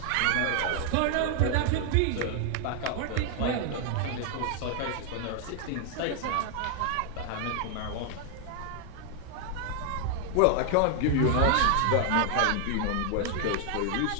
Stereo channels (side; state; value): both; different; correlation 0.00